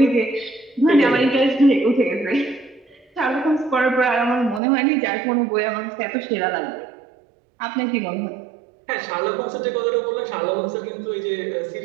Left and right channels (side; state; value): left; drops out; at 4.6 s